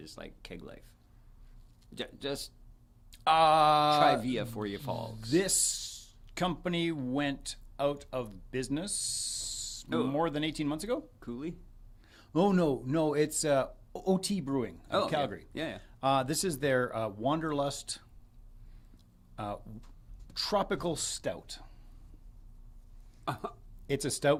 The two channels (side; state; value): both; identical; correlation 1.00